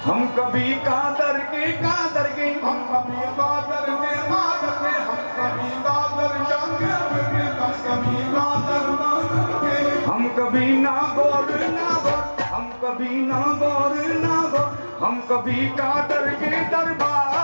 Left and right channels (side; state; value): both; inverted; correlation -1.00